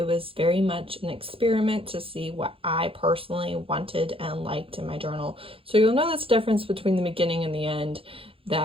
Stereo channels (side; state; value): left; late; 0.27 ms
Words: was very much an experiment to see what I personally wanted and liked in my journal. So you'll know this difference between the beginning and the end.